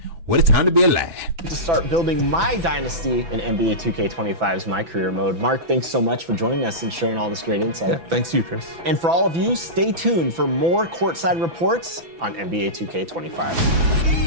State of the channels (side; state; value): left; late; 6.0 ms